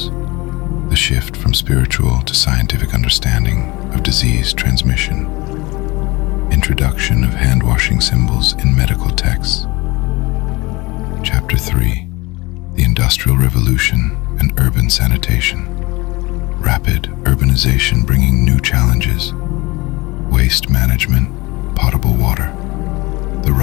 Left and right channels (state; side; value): quieter; right; 22.9 dB